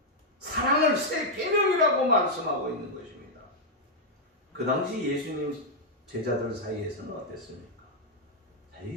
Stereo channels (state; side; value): normal; both; correlation -0.03